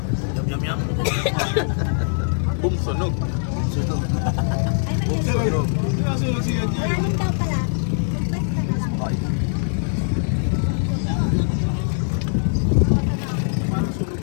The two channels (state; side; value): silent; right; 58 dB below the other